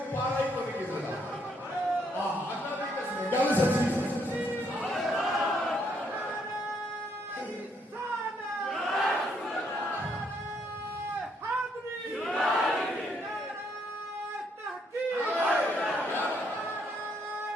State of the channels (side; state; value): both; normal; correlation 0.72